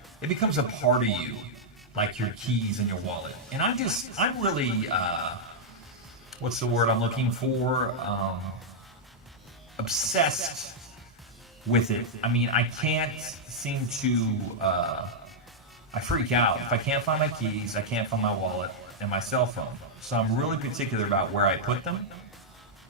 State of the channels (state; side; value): normal; both; correlation -0.05